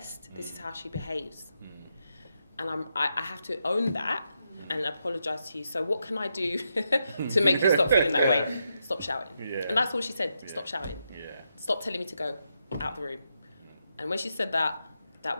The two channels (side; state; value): both; inverted; correlation -0.83